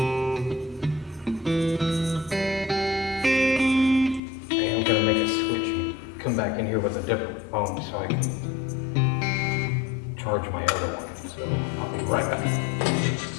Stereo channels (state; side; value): drops out; right; at 4.2 s